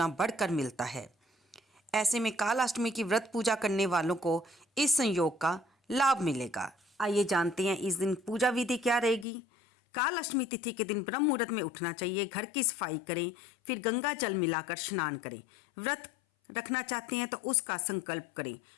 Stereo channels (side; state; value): right; drops out; at 9.2 s